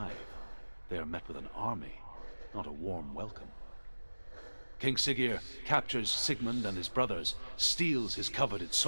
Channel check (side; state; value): both; inverted; correlation -1.00